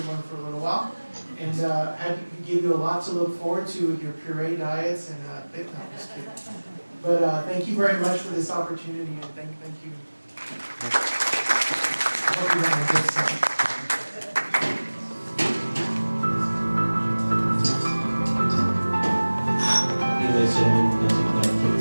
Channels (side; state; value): both; inverted; correlation -1.00